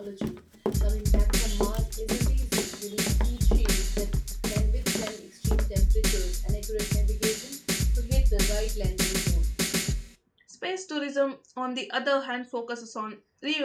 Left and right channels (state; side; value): identical; both; correlation 1.00